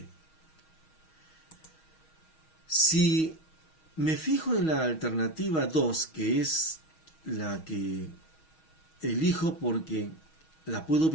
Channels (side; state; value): right; late; 6.3 ms